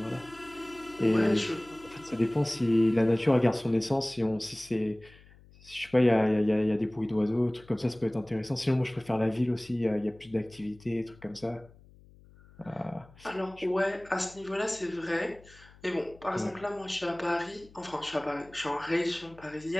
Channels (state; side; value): noise; left; hum, 24 dB below the sound